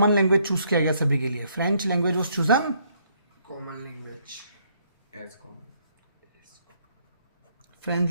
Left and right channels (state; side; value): inverted; both; correlation -0.69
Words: लैंग्वेज चूज किया गया सभी के लिए। French language was chosen, common language as common, French